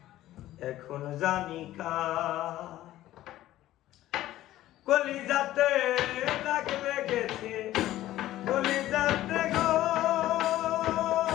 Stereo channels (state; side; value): quieter; right; 14.5 dB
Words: এখন জানি কার। কলিজাতে দাগ লেগেছে, কলিজাতে গো